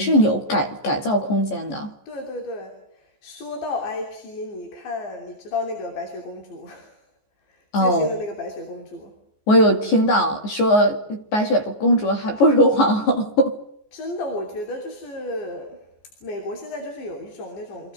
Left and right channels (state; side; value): late; right; 14 ms